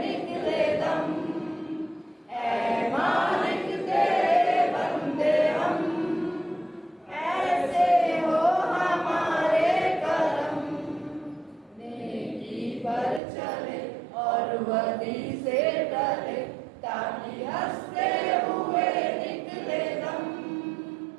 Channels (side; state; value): left; drops out; at 13.2 s